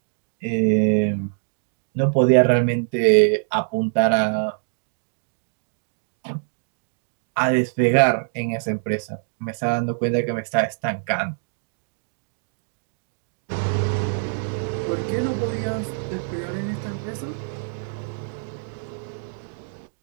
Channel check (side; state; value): left; silent; digital silence